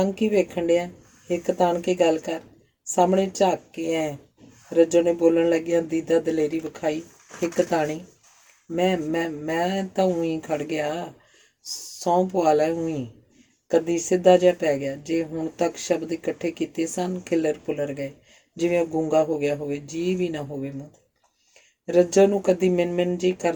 ਕੀ ਵੇਖਣ ਡਿਆ? ਇੱਕ ਤਾਣ ਕੇ ਗੱਲ ਕਰ, ਸਾਹਮਣੇ ਝਾਕ ਕੇ ਐ। ਰੱਜੋ ਨੇ ਬੋਲਣ ਲੱਗਿਆ ਦੀਦਾ ਦਲੇਰੀ ਵਿਖਾਈ। ਇੱਕ ਤਾਣੀ? ਮੈਂ ਤਾਂ ਊਂ ਖੜ ਗਿਆ। ਸਹੁੰ ਪਵਾ ਲੈ ਊਂ। ਕਦੀ ਸਿੱਧਾ ਜਿਹਾ ਪੈ ਗਿਆ। ਜੇ ਹੁਣ ਤੱਕ ਸ਼ਬਦ ਇਕੱਠੇ ਕੀਤੇ ਸਨ, ਖਿੱਲਰ ਪੁਲਰ ਗਏ, ਜਿਵੇਂ ਉਹ ਗੂੰਗਾ ਹੋ ਗਿਆ ਹੋਵੇ, ਜੀ ਵੀ ਨਾ ਹੋਵੇ ਮੂੰਹ 'ਤੇ। ਰੱਜੋ ਨੂੰ ਕਦੀ ਮਿਨ ਜੀ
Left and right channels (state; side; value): identical; both; correlation 1.00